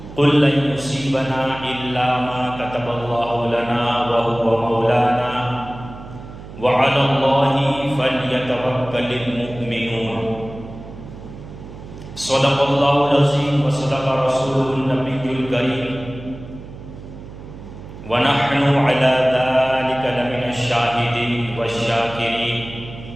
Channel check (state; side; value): noise; right; hum, 14 dB below the sound